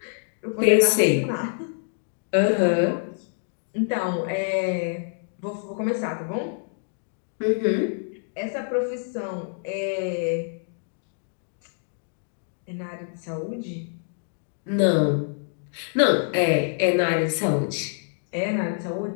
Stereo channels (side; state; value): right; silent; digital silence